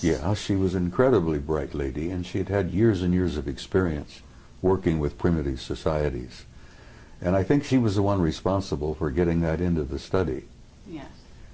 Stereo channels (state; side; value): identical; both; correlation 1.00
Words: Yeah, she was an incredibly bright lady, and she had had years and years of experience working with primitive societies. And I think she was the one responsible for getting that into the study. Yes.